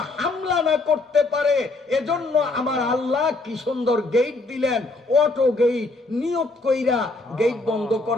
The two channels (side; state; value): right; quieter; 3.1 dB